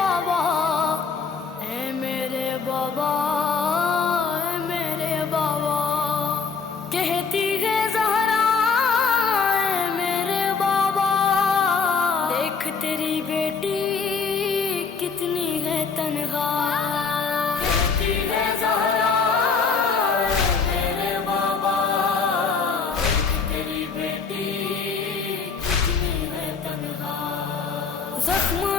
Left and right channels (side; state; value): right; quieter; 5.1 dB